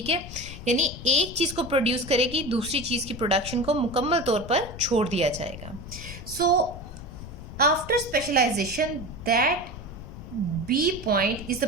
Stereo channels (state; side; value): noise; left; rumble, 12 dB below the sound